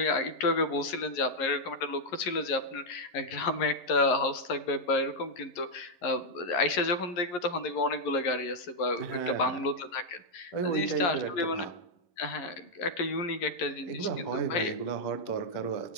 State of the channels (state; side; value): late; right; 11 ms